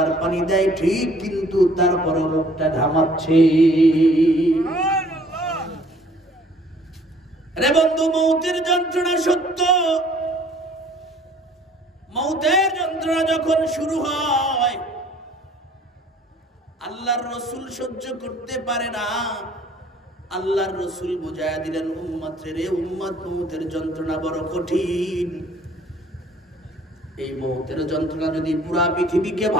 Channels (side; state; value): both; normal; correlation 0.56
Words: পানি দেয় ঠিক, কিন্তু তারপর মুখটা ঘামাচ্ছে। রে বন্ধু, মৌতের যন্ত্রণা সত্য। মৌতের যন্ত্রণা যখন শুরু হয়, আল্লাহর রাসূল সহ্য করতে পারে না। আল্লাহর রাসূল বুঝায়া দিলেন, উম্মত রে উম্মত, মৌতের যন্ত্রণা বড় কঠিন। এই মৌতের যন্ত্রণা যদি পুরা পৃথিবীকে